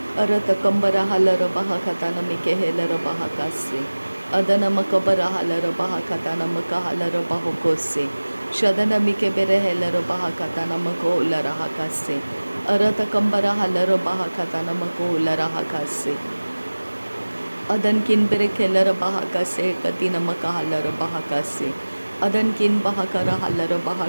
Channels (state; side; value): inverted; both; correlation -1.00